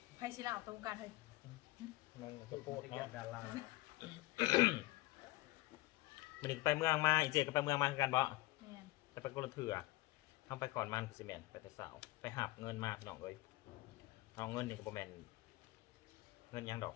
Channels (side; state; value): right; quieter; 19.0 dB